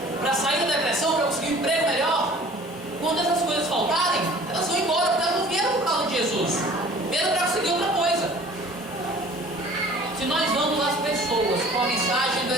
para sair da depressão, para conseguir um emprego melhor, quando essas coisas faltarem, elas vão embora, porque elas não vieram por causa de Jesus, vieram para conseguir outra coisa. Se nós vamos às pessoas com a mensagem do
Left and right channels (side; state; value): both; normal; correlation 0.48